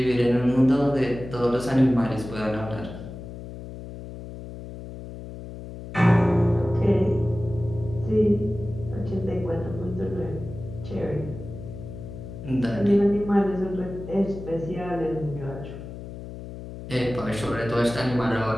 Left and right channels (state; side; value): noise; left; hum, 11 dB below the sound